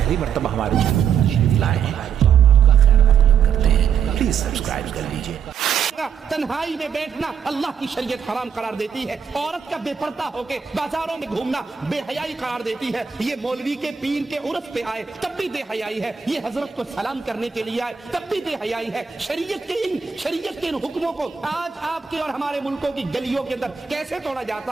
مرتبہ ہمارے چینل پر تشریف لائے ہیں تو ہم آپ کا خیر مقدم کرتے ہیں، پلیز سبسکرائب کر لیجئے۔ تنہائی میں بیٹھنا اللہ کی شریعت حرام قرار دیتی ہے۔ عورت کا بے پردہ ہو کے بازاروں میں گھومنا بے حیائی قرار دیتی ہے۔ یہ مولوی کے پیر کے عرس پہ آئے تب بھی بے حیائی ہے، یہ حضرت کو سلام کرنے کے لیے آئے تب بھی بے حیائی ہے۔ شریعت کے ان حکموں کو آج آپ کے اور ہمارے ملکوں کی گلیوں کے اندر کیسے توڑا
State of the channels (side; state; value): left; quieter; 7.2 dB